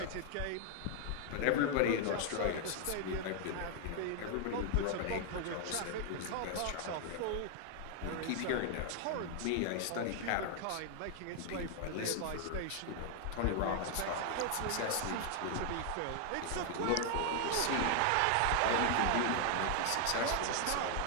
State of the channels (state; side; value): different; both; correlation 0.00